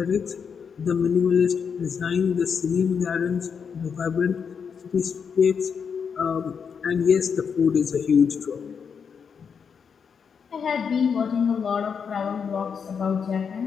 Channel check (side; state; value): right; quieter; 6.5 dB